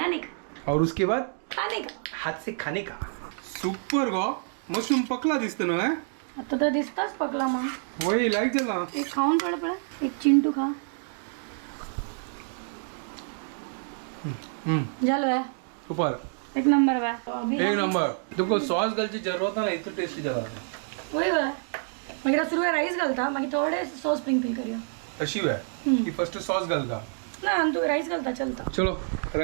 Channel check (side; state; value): left; silent; 60 dB below the other